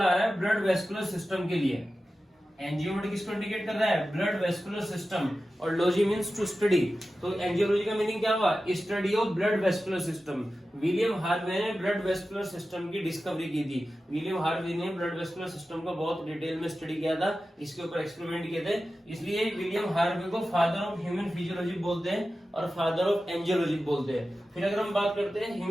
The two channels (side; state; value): both; normal; correlation 0.94